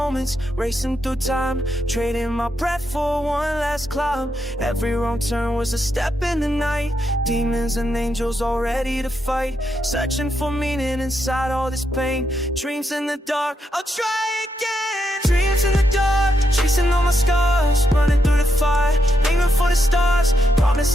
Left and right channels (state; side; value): normal; both; correlation 0.81